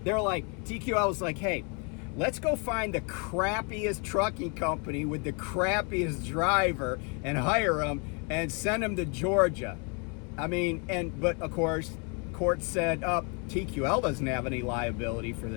TQL was like, hey, let's go find the crappiest trucking company with the crappiest driver and hire them and send them to Georgia. But of course, court said, TQL doesn't have any liability for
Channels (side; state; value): right; quieter; 35.2 dB